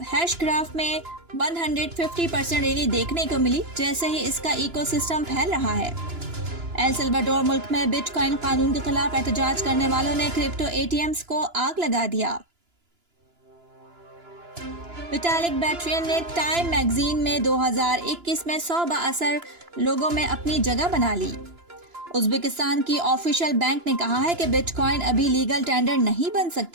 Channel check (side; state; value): left; late; 2.9 ms